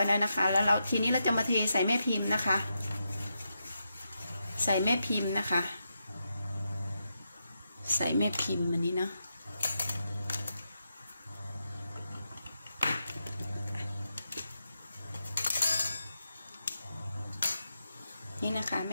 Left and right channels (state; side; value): inverted; both; correlation -0.85